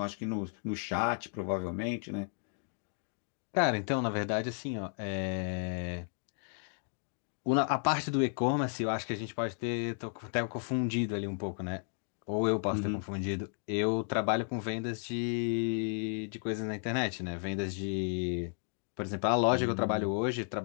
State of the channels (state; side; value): silent; right; 55 dB below the other